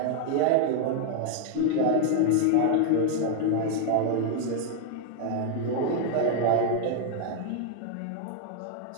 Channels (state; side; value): different; both; correlation 0.00